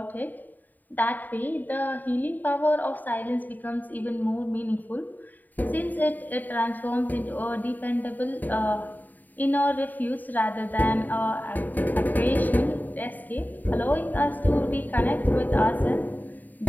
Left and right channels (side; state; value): right; late; 0.086 ms